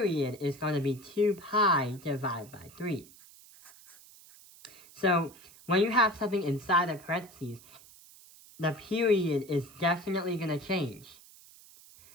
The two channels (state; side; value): noise; right; hiss, 22 dB below the sound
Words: is going to be 2 pi divided by 3. So when you have something inside the parentheses, the period is definitely going to change.